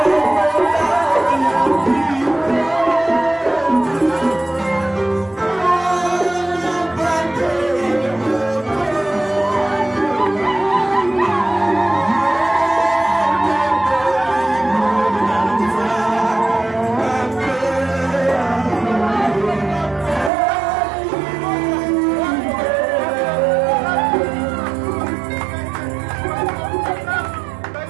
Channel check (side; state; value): left; drops out; at 20.3 s